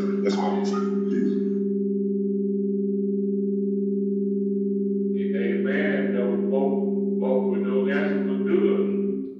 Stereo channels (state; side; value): identical; both; correlation 1.00